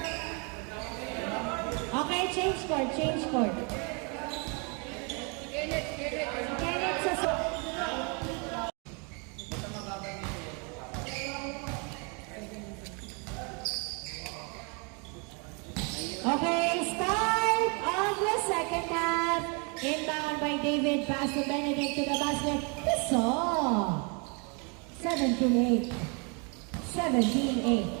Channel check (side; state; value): left; quieter; 34.3 dB